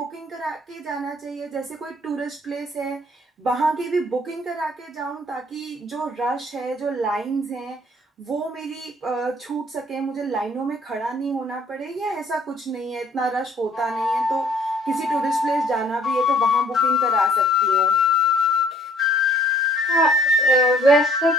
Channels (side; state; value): both; normal; correlation 0.58